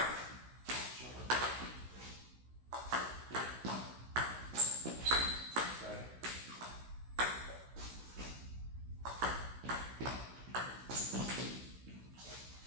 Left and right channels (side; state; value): left; late; 16 ms